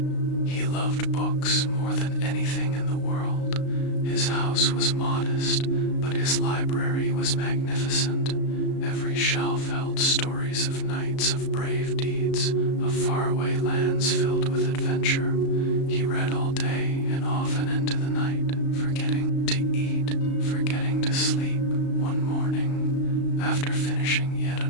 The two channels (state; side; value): late; right; 35 ms